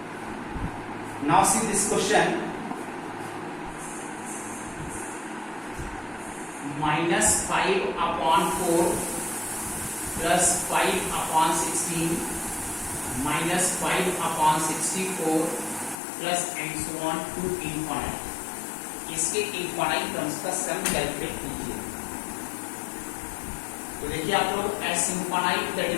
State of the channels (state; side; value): drops out; right; at 16.0 s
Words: Now see this question, -5/4 +5/16 -5/64 plus and so on to infinite. इसके इनफाइनाइट टर्म्स का सम कैलकुलेट कीजिए। तो देखिए आप लोग S infinite that